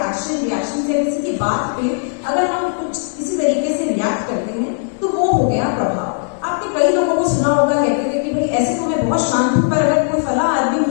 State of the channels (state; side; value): silent; right; 56 dB below the other